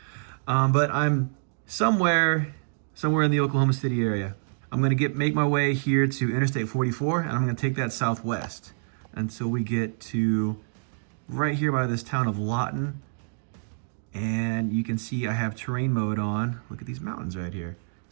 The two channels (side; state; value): left; silent; digital silence